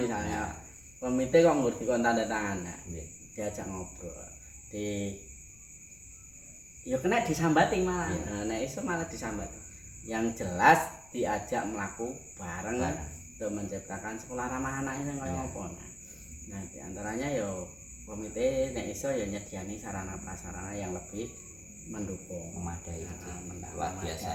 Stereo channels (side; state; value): left; noise; rumble, 25 dB below the sound